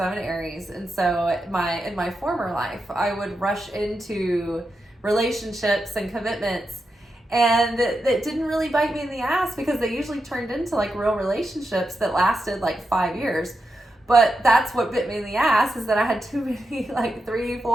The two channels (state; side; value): normal; both; correlation 0.87